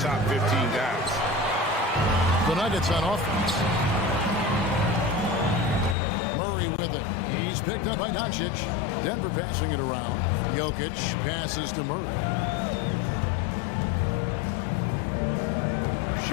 15 guys. The Nuggets on offense. Murray with it. He's picked up by Doncic. Denver passing it around. Jokic passes to Murray.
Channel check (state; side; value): drops out; right; at 6.0 s